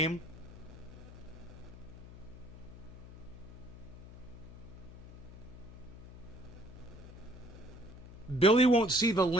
Billy won't see the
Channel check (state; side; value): noise; left; hum, 15 dB below the sound